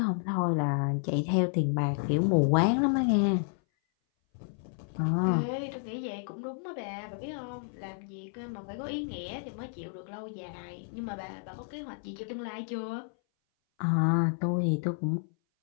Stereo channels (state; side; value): silent; right; 57 dB below the other